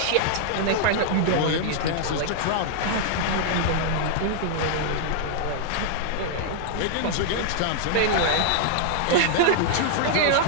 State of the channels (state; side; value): different; both; correlation -0.01